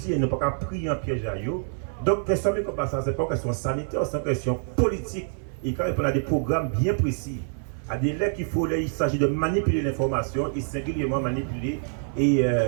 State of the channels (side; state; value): left; silent; digital silence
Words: nous ne pouvons pas prier en piège à eux. Donc, question comme ça, ce n'est pas une question sanitaire, c'est une question politique. Et quand il y a des programmes bien précis, à des lettres qu'il faut, il s'agit de manipuler l'information et singulièrement manipuler et